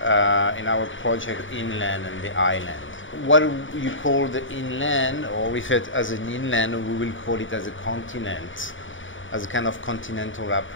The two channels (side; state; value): right; late; 0.56 ms